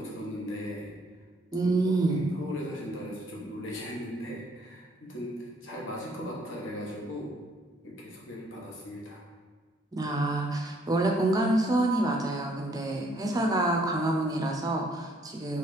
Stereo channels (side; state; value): both; normal; correlation 0.65